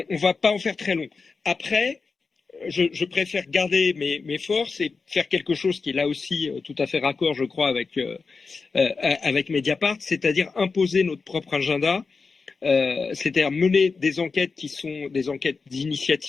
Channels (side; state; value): right; quieter; 4.6 dB